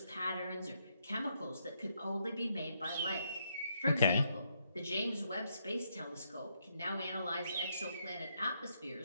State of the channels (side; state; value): both; inverted; correlation -0.76